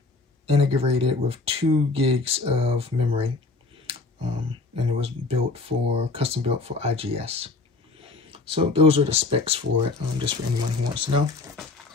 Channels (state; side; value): quieter; right; 3.6 dB